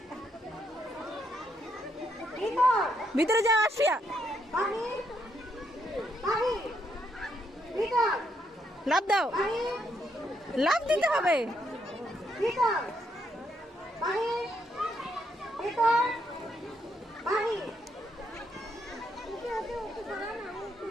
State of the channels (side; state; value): both; normal; correlation 0.76